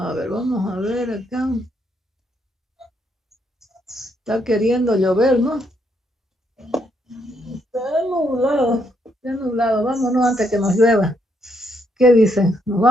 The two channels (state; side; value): normal; both; correlation 0.75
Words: ver, vamos a ver acá. Está queriendo llover, ¿no? Está nublado. Vámonos antes que nos llueva. ¿Qué dicen? ¿Nos